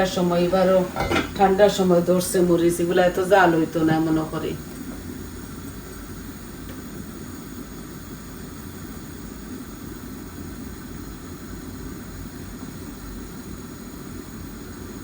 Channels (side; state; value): both; identical; correlation 1.00